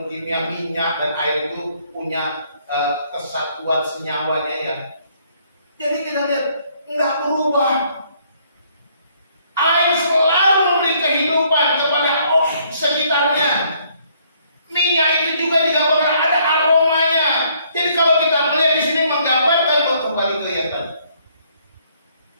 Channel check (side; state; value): both; inverted; correlation -0.66